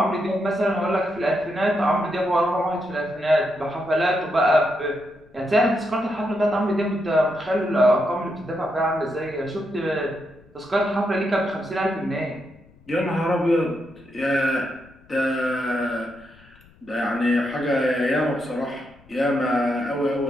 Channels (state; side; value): noise; left; rumble, 27 dB below the sound